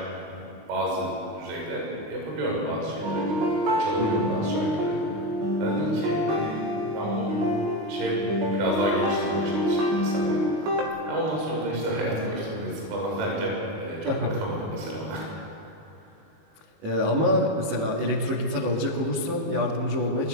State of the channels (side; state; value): left; late; 19 ms